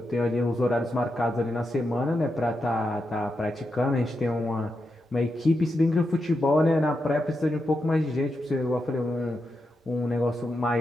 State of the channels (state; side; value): normal; both; correlation 0.86